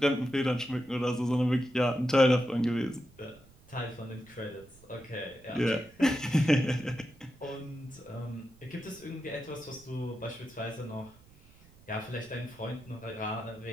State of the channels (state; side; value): noise; right; rumble, 26 dB below the sound